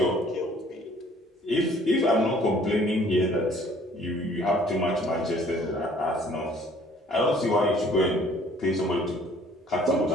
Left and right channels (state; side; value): normal; both; correlation 0.57